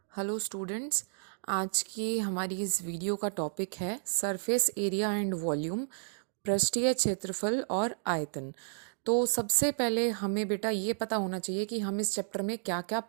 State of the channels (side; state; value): left; silent; digital silence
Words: Hello students. आज की हमारी इस वीडियो का टॉपिक है सरफेस एरिया एंड वॉल्यूम, पृष्ठीय क्षेत्रफल और आयतन। तो सबसे पहले हमें बेटा ये पता होना चाहिए कि हम इस चैप्टर में क्या क्या